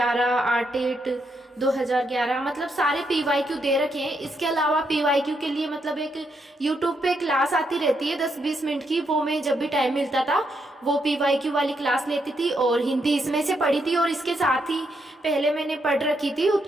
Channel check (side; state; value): both; normal; correlation 0.79